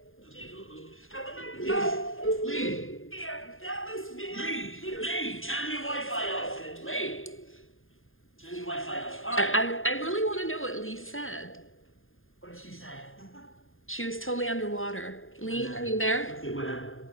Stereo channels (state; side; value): late; right; 0.59 ms